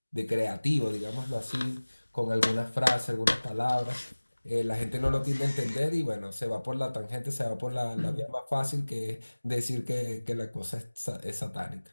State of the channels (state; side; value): inverted; both; correlation -1.00